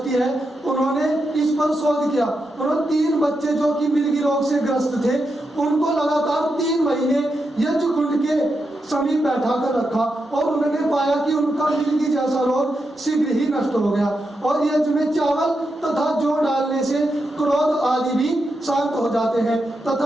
है, उन्होंने इस पर शोध किया। उन्होंने 3 बच्चे जो कि मिर्गी रोग से ग्रस्त थे, उनको लगातार 3 महीने यज्ञ कुंड के समीप बैठा कर रखा, और उन्होंने पाया कि उनका मिर्गी जैसा रोग शीघ्र ही नष्ट हो गया। और यज्ञ में चावल तथा जौ डालने से क्रोध आदि भी शांत हो जाते हैं।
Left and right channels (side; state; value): both; normal; correlation 0.86